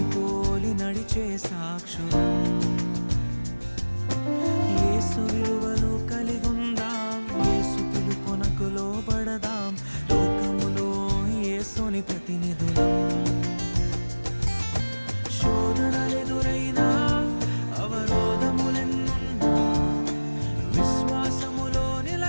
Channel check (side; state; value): both; inverted; correlation -1.00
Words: పోలి నడిచే సాక్షులం. యేసు విలువలు కలిగుందాం, యేసు పిలుపునకు లోబడదాం, లోకములో యేసుని ప్రతినిధులం. శోధనలెదురైనా అవరోధములెన్నున్నా విశ్వాసములో